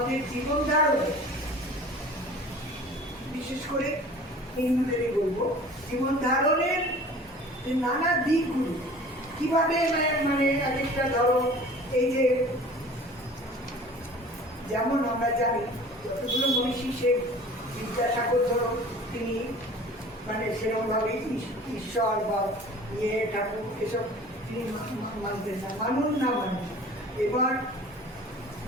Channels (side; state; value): both; normal; correlation 0.44